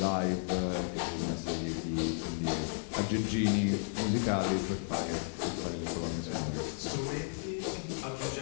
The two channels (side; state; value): right; silent; digital silence